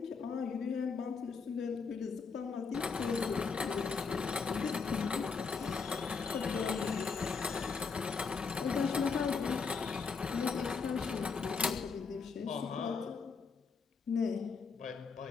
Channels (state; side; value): quieter; right; 5.2 dB